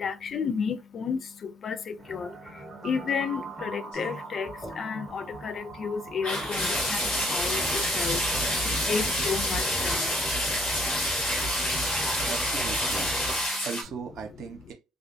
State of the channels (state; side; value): normal; both; correlation 0.65